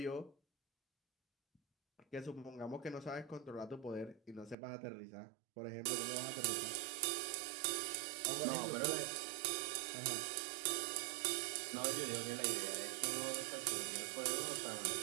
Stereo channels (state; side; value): drops out; left; at 4.5 s